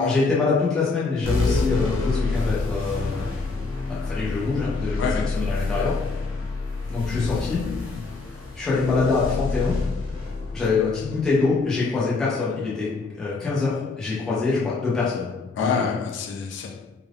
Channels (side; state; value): right; quieter; 3.8 dB